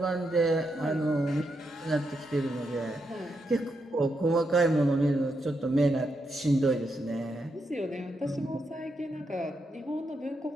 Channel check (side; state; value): both; normal; correlation 0.82